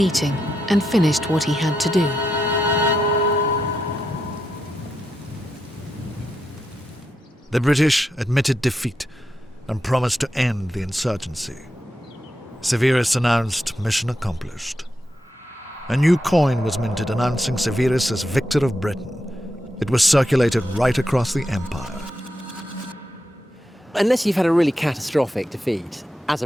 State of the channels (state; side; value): normal; both; correlation 0.85